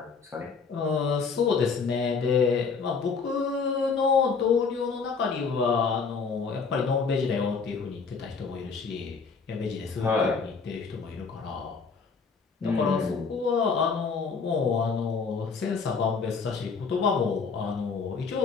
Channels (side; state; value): right; quieter; 5.2 dB